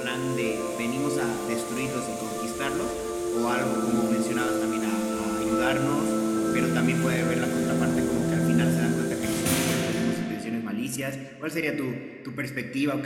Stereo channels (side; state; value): both; identical; correlation 1.00